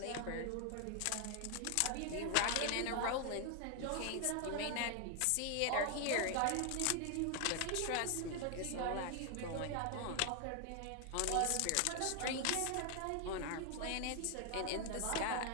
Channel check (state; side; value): different; both; correlation 0.00